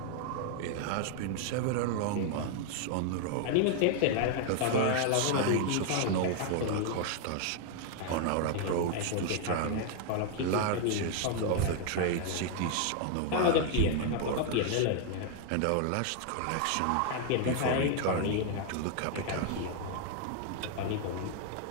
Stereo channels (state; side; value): different; both; correlation 0.00